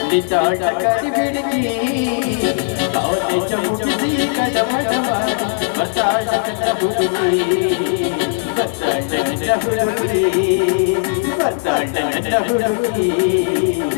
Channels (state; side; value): silent; right; digital silence